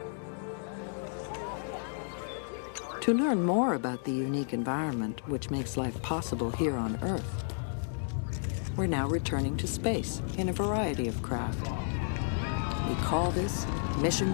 To learn more about the unique environment which makes life possible here on Earth, we're now returning to space in a variety of craft. We call this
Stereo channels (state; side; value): silent; right; digital silence